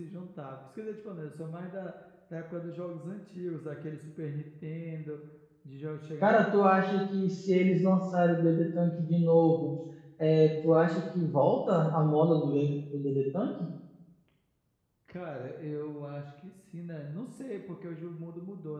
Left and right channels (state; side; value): identical; both; correlation 1.00